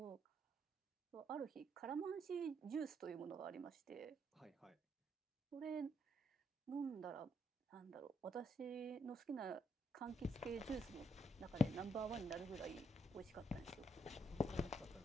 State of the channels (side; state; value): both; normal; correlation 0.75